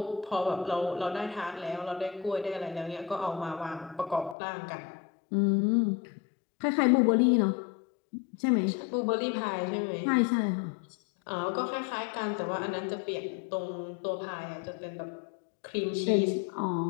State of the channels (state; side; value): drops out; right; at 4.4 s